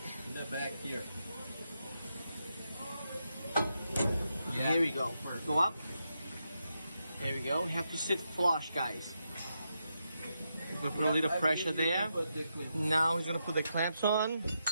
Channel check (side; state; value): both; inverted; correlation -0.84